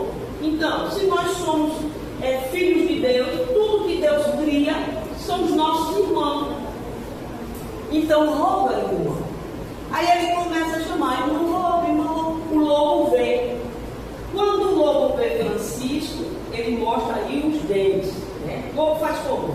Então, se nós somos filhos de Deus, tudo que Deus cria são os nossos irmãos. Então, o lobo é irmão. Aí ele começa a chamar: irmão lobo, irmão lobo. O lobo vem. Quando o lobo vê Francisco, ele mostra aí os dentes, né? O lobo faz como?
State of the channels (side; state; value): both; identical; correlation 1.00